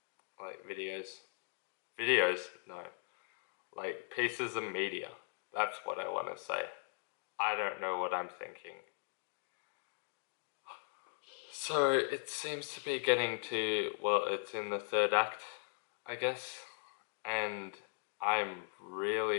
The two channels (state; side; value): silent; right; digital silence